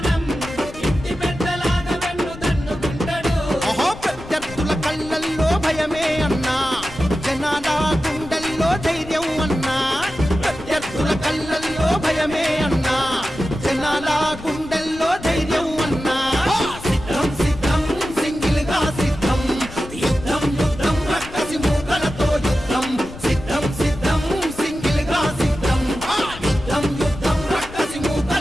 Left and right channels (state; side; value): noise; left; rumble, 15 dB below the sound